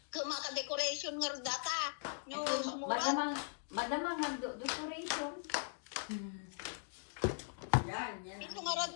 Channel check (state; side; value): silent; right; digital silence